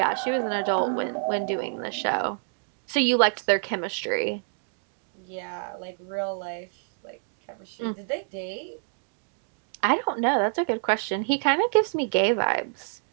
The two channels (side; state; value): left; silent; digital silence